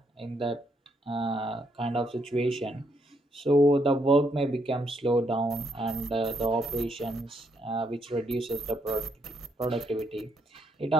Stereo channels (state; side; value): normal; both; correlation 0.74